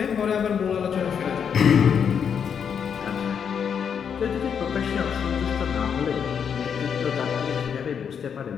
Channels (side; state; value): right; quieter; 7.4 dB